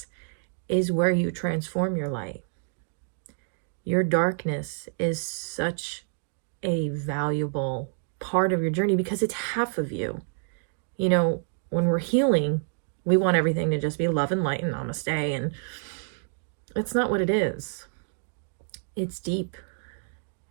is where you transform your light. Your darkness is such a valuable part of your journey because it's half of you. You know, when we're healing, we want everything to just be love and light and namaste, and it's not what it is. It's deep,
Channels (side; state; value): left; silent; digital silence